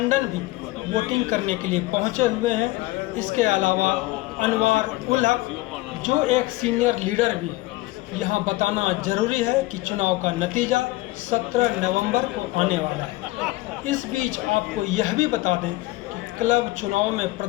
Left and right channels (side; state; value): right; quieter; 19.6 dB